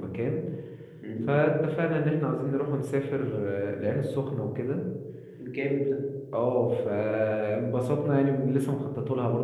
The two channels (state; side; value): identical; both; correlation 1.00